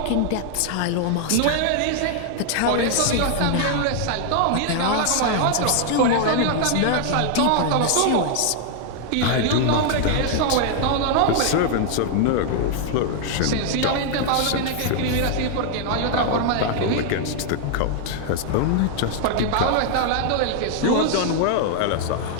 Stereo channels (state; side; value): different; both; correlation 0.00